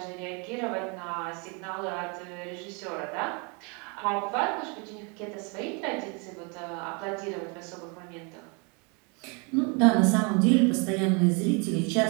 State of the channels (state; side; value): quieter; left; 32.8 dB